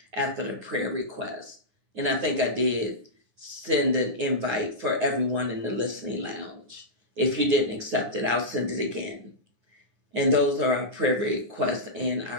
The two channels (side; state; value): left; late; 9.7 ms